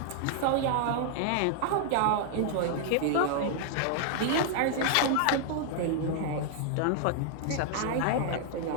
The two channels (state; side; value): different; both; correlation -0.01